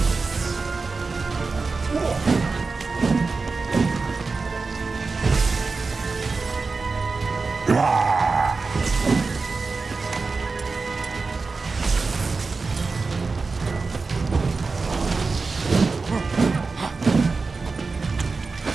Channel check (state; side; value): quieter; left; 4.2 dB